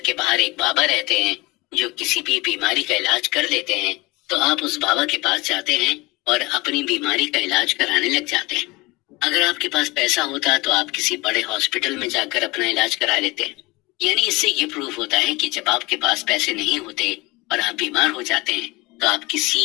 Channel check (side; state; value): right; quieter; 23.1 dB